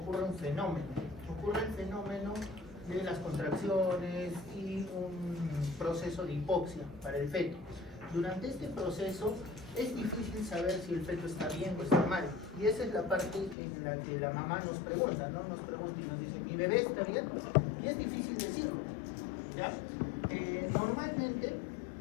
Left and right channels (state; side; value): drops out; right; at 13.6 s